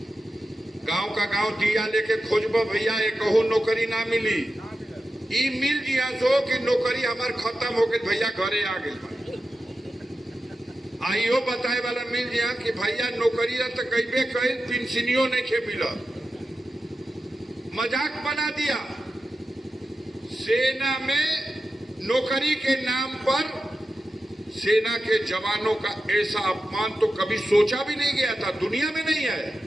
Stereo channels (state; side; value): normal; both; correlation 0.92